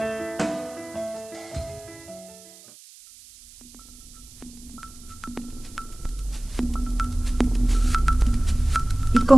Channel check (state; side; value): noise; right; hiss, 21 dB below the sound